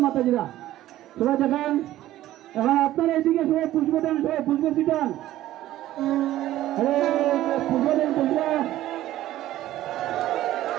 মাতাজিরা সবাই দেখান। এখন আপনারা এইদিকে সবাই পুষ্প দেন, সবাই পুষ্প ছিটান, পুষ্প দেন, পুষ্প।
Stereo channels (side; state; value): left; quieter; 14.3 dB